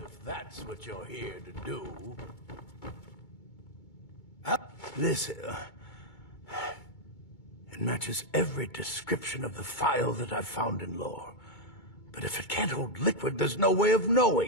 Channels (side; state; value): right; late; 2.2 ms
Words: that's what you're here to do. Listen, it matches every description of the file that I've found in lore. But if it can't hold liquid, there's no way of